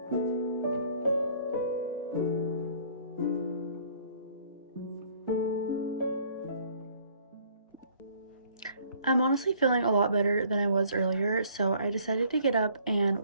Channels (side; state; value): both; inverted; correlation -0.59